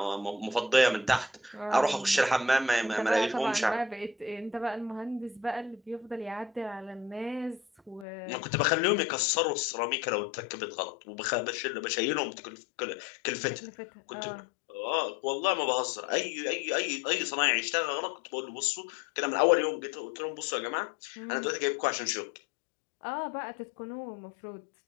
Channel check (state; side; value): drops out; right; at 8.1 s